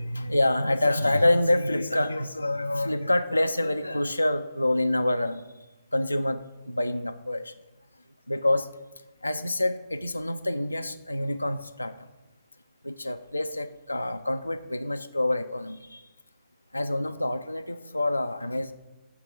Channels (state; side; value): inverted; both; correlation -0.96